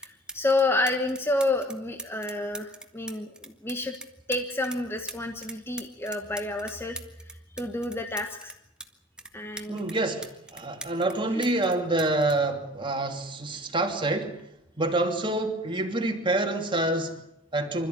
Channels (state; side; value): normal; both; correlation 0.46